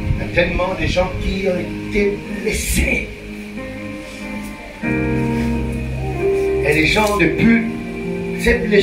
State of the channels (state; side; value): identical; both; correlation 1.00